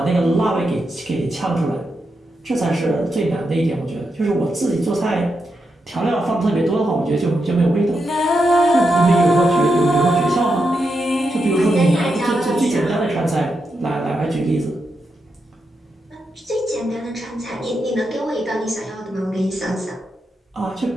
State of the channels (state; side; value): normal; both; correlation 0.85